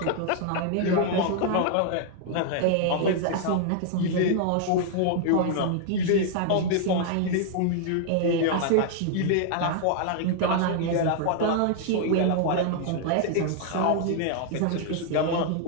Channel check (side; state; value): both; different; correlation 0.00